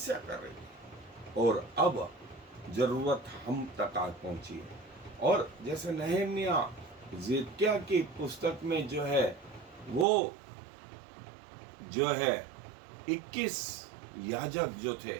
कर रही थी। और अब जरूरत हम तक आ पहुंची है। और जैसे नहम्याह जिदकिय्याह की पुस्तक में जो है वो जो है 21 याजक जो थे,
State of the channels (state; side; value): drops out; left; at 10.1 s